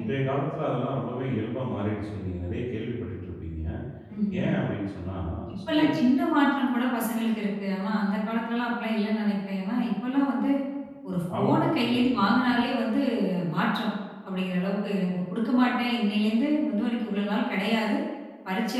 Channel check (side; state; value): both; identical; correlation 1.00